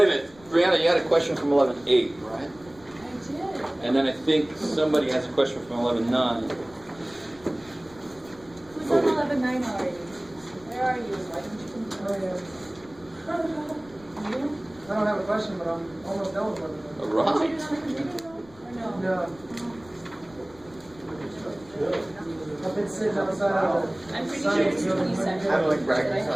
a minute, Brianna, you had a question from 11.8, right? I did. And then I think somebody has a question from 11.9. Who's on 11.9 already? Where are you? Why don't you come You? I don't have a question, but I'm almost done with it. Did Right. you do it on the computer though? Or no? No. I've been sitting outside of I'm pretty sure it's 27. I don't like bragging, Did I so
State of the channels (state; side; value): noise; left; rumble, 24 dB below the sound